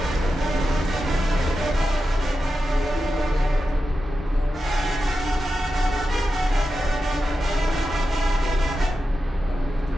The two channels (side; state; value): both; normal; correlation 0.90